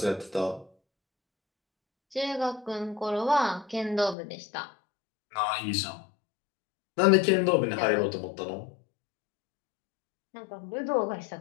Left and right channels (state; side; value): drops out; right; at 4.2 s